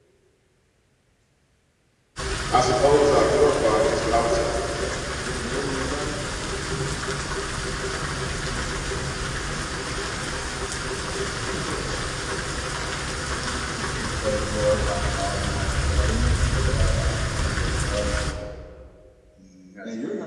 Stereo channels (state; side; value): identical; both; correlation 1.00